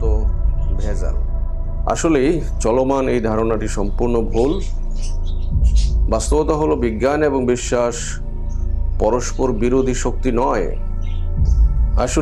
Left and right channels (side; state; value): both; identical; correlation 1.00